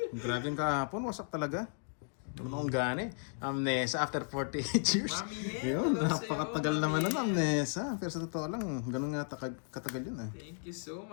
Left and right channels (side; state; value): right; silent; 55 dB below the other